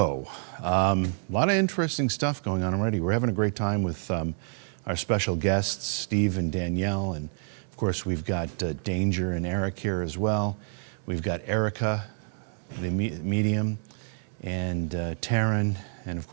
a lot of interesting stuff going on already. We're having a great time with our special guests, Steve and Danielle, and of course we've got Danger and Eric here as well. We've got Erica, the medium, and Taryn, and of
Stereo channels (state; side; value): silent; left; 59 dB below the other